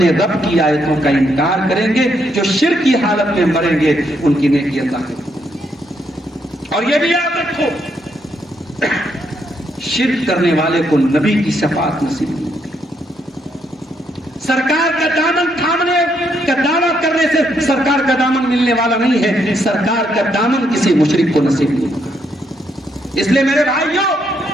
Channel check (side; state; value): both; normal; correlation 0.75